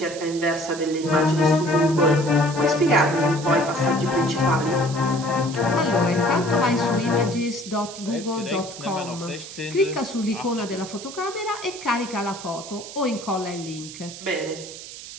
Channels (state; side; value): noise; right; hiss, 13 dB below the sound